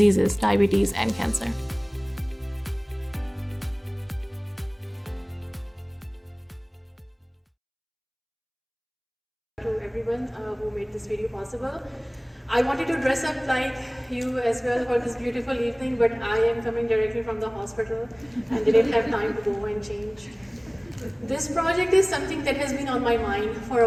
diabetes and cancer. To everyone who made this video possible. I wanted to dress up like you as well for this beautiful evening, but I am coming directly from the hospital and didn't have time to go and change. This project is something that has been on my mind for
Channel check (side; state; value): both; identical; correlation 1.00